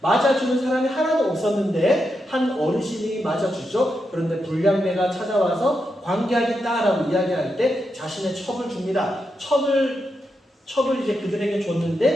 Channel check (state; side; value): normal; both; correlation 0.85